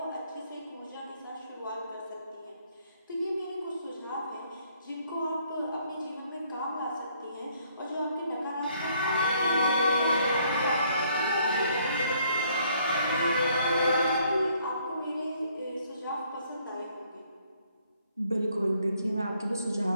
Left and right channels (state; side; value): inverted; both; correlation -0.66